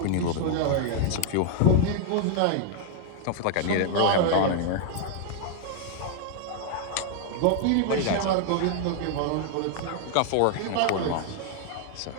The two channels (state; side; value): different; both; correlation 0.00